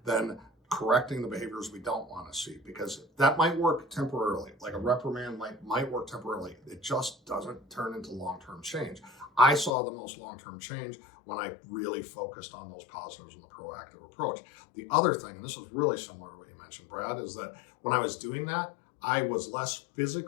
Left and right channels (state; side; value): drops out; right; at 9.7 s